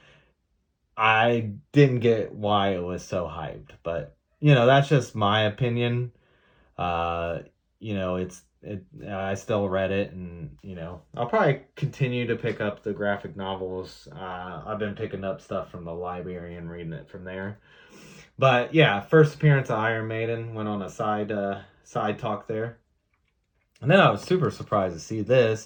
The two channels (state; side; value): identical; both; correlation 1.00